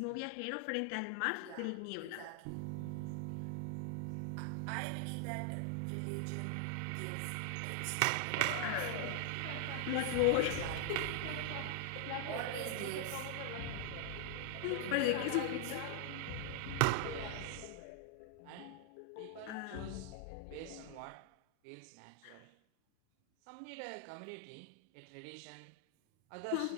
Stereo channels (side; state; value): both; different; correlation 0.00